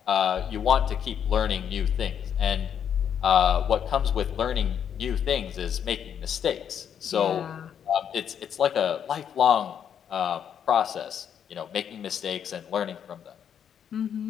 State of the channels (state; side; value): quieter; right; 8.5 dB